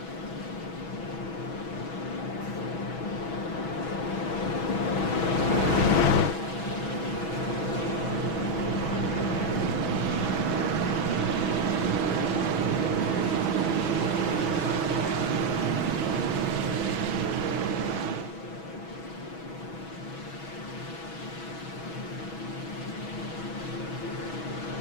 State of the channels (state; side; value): late; right; 6.2 ms